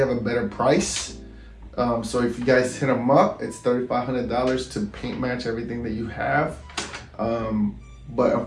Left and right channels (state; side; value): identical; both; correlation 1.00